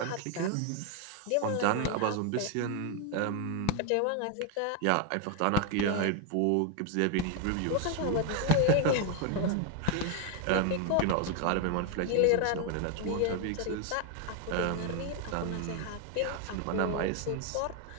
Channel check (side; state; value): both; different; correlation 0.01